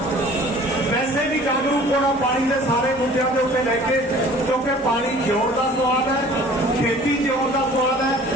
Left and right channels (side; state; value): both; normal; correlation 0.49